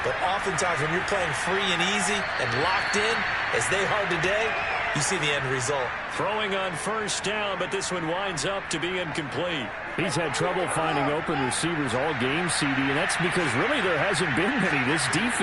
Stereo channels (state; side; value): identical; both; correlation 1.00